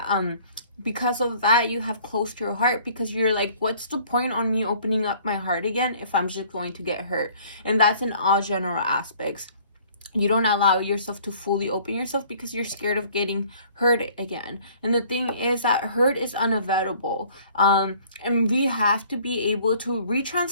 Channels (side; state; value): both; inverted; correlation -0.55